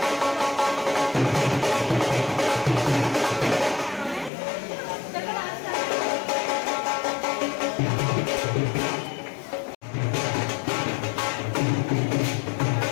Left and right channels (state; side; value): drops out; right; at 4.3 s